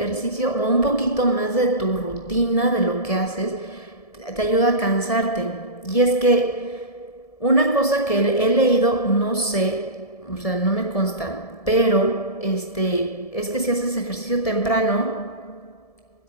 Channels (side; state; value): right; late; 1.7 ms